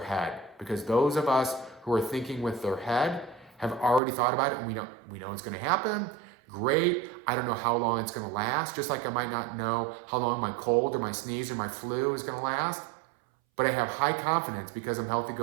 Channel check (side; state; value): left; drops out; at 4.0 s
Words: Because those of us who are thinking with their head have already thought about it and we know it's going to happen. Great. I don't know how long it's going to last. Just like I might not know how long my cold or my sneeze or my flu is going to last. But I have high confidence because I'm healthy